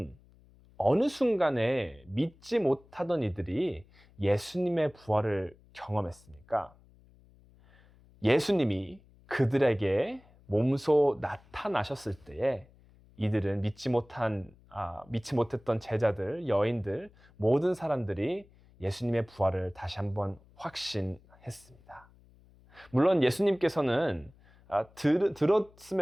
어느 순간에 믿지 못하던 이들이 예수님의 부활을 경험했습니까? 예수님이 그들에게 몸소 나타나셨을 때에 이들은 믿지 못했던 제자들, 여인들, 모든 사람들이 예수님의 부활을 다시 한번 확신했습니다. 물론 예수님께서는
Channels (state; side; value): noise; left; hum, 27 dB below the sound